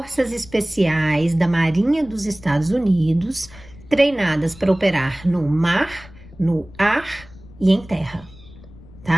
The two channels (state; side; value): noise; left; rumble, 21 dB below the sound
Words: Especiais da Marinha dos Estados Unidos, treinadas para operar no mar, no ar e em terra,